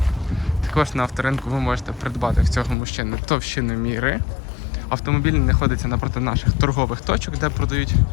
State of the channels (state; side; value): drops out; right; at 2.8 s